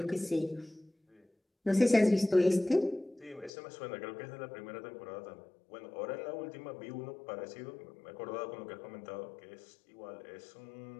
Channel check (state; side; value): drops out; right; at 3.5 s